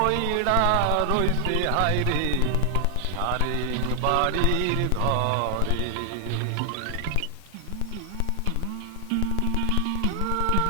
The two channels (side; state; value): both; different; correlation 0.00